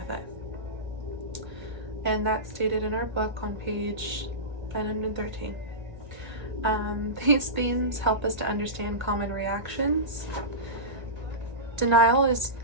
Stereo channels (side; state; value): left; late; 1.7 ms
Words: it. And that's stated in our book on page 913. These themes help us to understand common reactions. Denial is